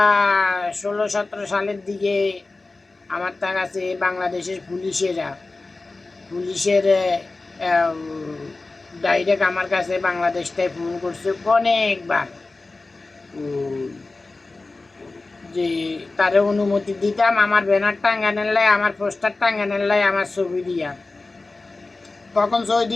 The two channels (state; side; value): quieter; right; 3.4 dB